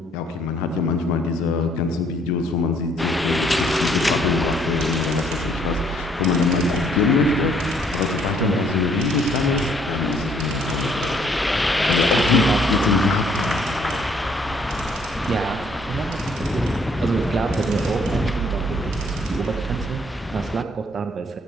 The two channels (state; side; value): normal; both; correlation 0.65